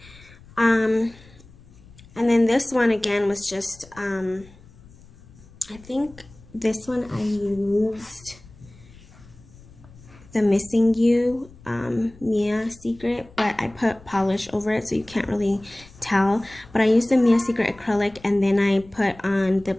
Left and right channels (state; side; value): noise; left; rumble, 23 dB below the sound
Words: And then this one again was just, I think this one I used the Missing You Mia Secret, but I put polish over it so you can't really tell. But I used the Mia Secret acrylic, and then I put on the